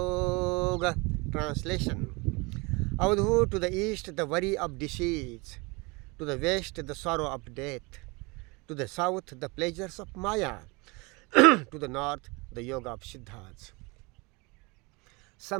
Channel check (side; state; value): left; quieter; 26.9 dB